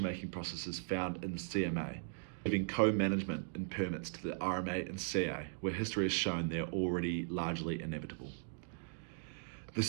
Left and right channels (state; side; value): silent; left; digital silence